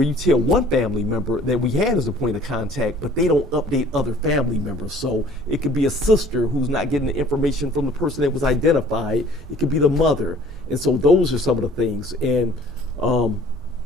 you tell one family member that we had as a point of contact, but they don't update other family members. So it could be a sister who's not getting the information from the person that was identified. It could be the mother. And so those are some of the things. And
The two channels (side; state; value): both; normal; correlation 0.53